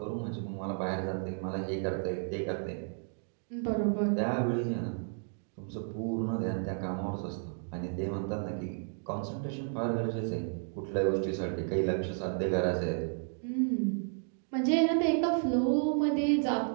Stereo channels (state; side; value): silent; left; 56 dB below the other